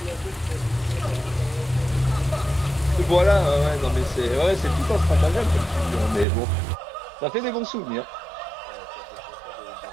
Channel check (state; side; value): drops out; left; at 6.2 s